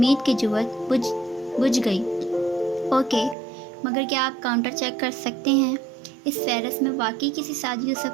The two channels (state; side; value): drops out; left; at 3.4 s